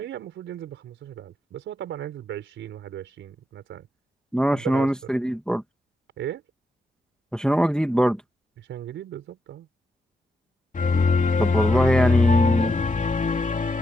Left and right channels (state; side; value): normal; both; correlation 0.83